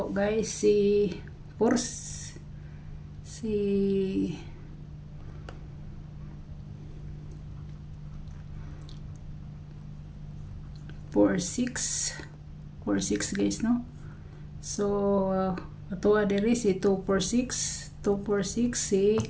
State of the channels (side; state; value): both; identical; correlation 1.00